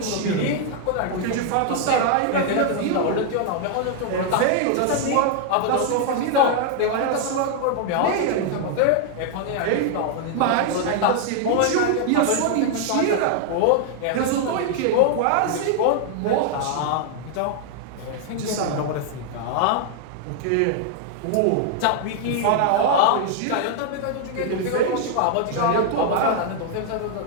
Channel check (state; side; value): different; both; correlation 0.00